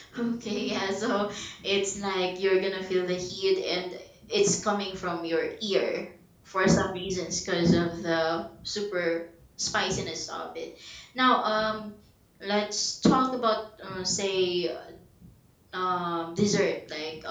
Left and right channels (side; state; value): both; identical; correlation 1.00